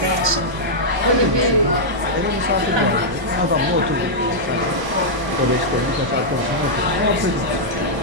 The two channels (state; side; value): late; left; 1.0 ms